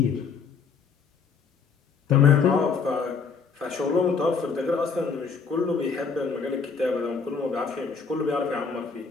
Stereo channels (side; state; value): right; quieter; 5.5 dB